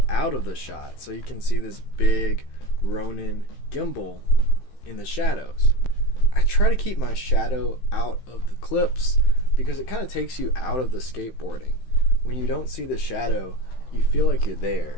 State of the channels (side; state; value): right; late; 15 ms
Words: out of the shot, so you can see this big Ronin gimbal in the shadows. I try to keep my shadow out of the clips because it kind of takes you out of the skateboarding. When you don't see the shadow, you feel like you're there.